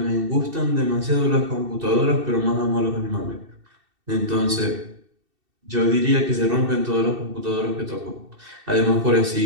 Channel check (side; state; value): left; late; 2.7 ms